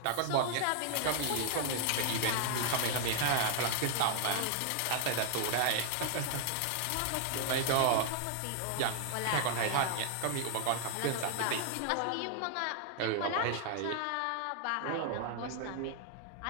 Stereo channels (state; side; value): different; both; correlation 0.00